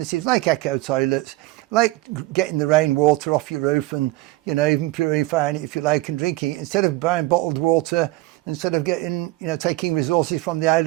like eco toilets, like getting the rainwater off your roof, and even purifying it if you like and drinking it instead of buying bottled water, instead of getting taking resources from the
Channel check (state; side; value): quieter; left; 18.9 dB